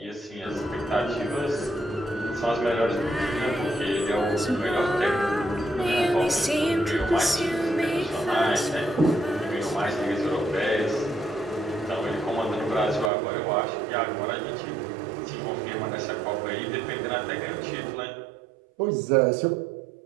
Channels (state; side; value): drops out; left; at 13.1 s